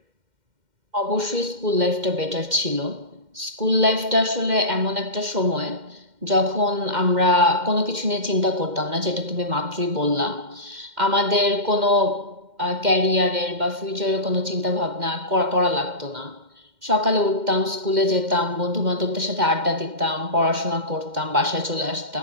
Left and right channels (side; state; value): left; late; 2.1 ms